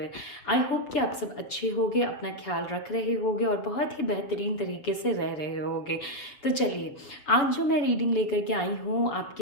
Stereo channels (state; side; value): late; right; 7.0 ms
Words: आई होप कि आप सब अच्छे होंगे, अपना ख्याल रख रहे होंगे और बहुत ही बेहतरीन तरीके से रह रहे होंगे। तो चलिए, आज जो मैं रीडिंग लेकर के आई हूँ